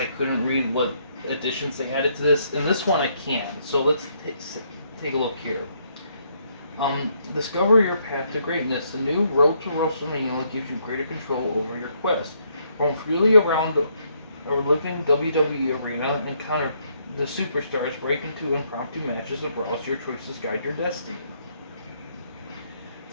couldn't read what additions they added to this, in this one I can. So let's take a look here. Discover your path to greatness. The new Road to WrestleMania gives you greater control over your quest. Roam freely around a living WWE arena and encounter the superstars, break into impromptu matches and browse. Your choices guide your destiny.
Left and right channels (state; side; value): inverted; both; correlation -0.72